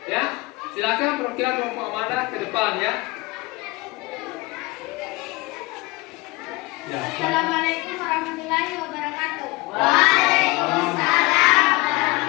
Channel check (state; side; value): quieter; right; 23.4 dB